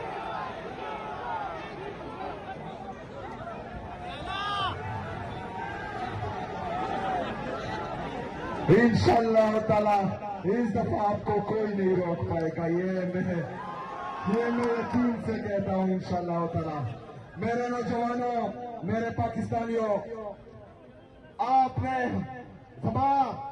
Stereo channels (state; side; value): identical; both; correlation 1.00